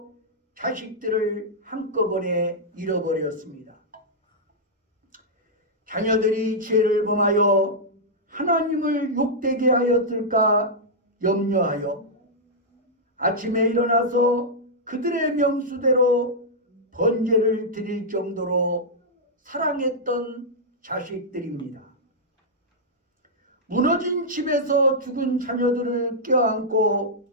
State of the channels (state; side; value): normal; both; correlation -0.07